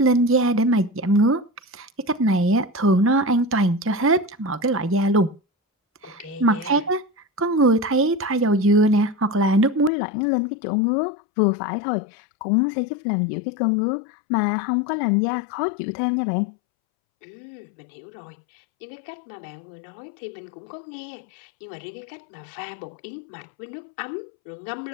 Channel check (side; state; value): right; drops out; at 9.9 s